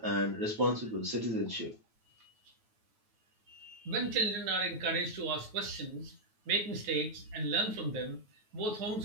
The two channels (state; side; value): late; left; 9.2 ms